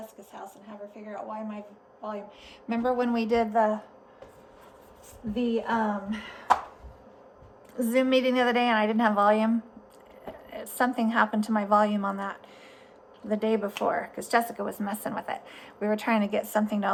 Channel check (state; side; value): identical; both; correlation 1.00